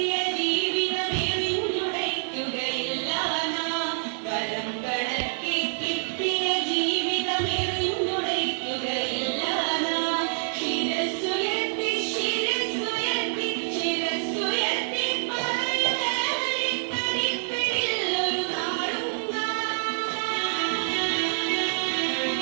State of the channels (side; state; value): left; silent; 60 dB below the other